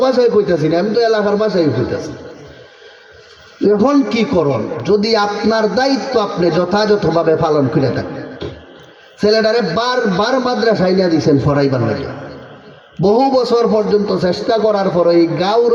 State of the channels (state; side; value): identical; both; correlation 1.00